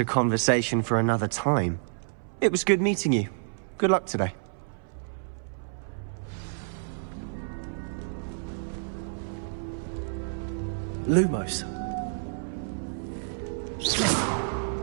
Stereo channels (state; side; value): silent; left; 59 dB below the other